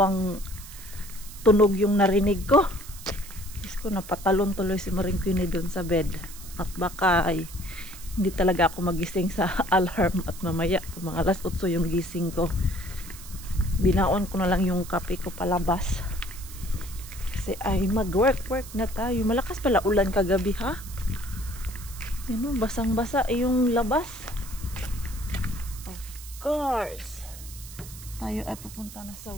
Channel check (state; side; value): noise; right; hiss, 15 dB below the sound